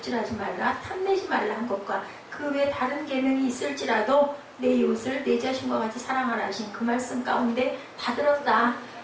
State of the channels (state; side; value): identical; both; correlation 1.00